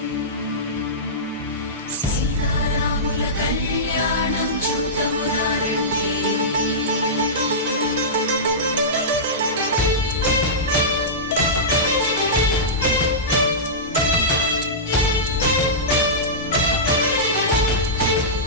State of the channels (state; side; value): normal; both; correlation -0.16